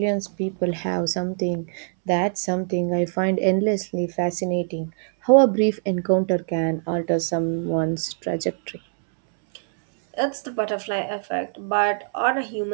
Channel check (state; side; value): silent; left; 63 dB below the other